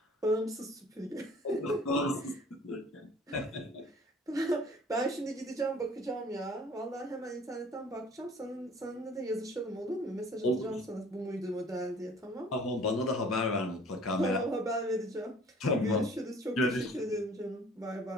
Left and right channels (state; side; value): normal; both; correlation 0.52